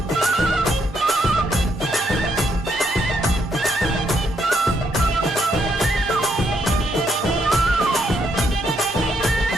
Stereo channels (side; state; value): both; normal; correlation 0.76